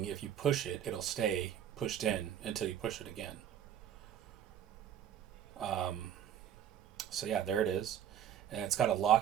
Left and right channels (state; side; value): quieter; left; 9.9 dB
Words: if you push it, it'll stay pushed in until you push it again. So yeah, there it is. And it's got a